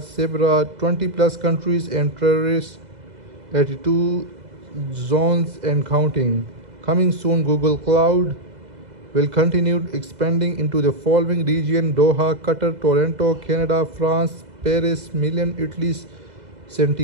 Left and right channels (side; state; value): left; late; 2.0 ms